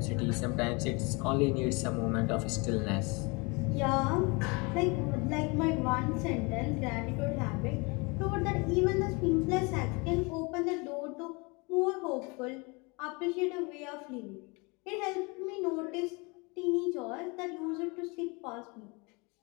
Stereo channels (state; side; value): quieter; right; 28.7 dB